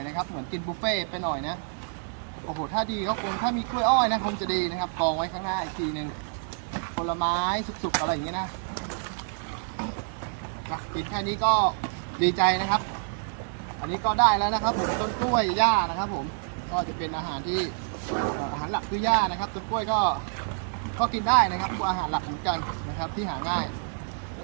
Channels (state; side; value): silent; left; digital silence